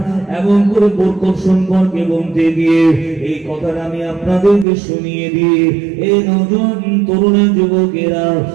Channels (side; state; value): left; drops out; at 4.7 s